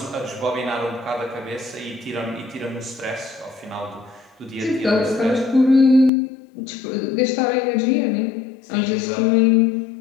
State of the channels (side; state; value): right; drops out; at 6.1 s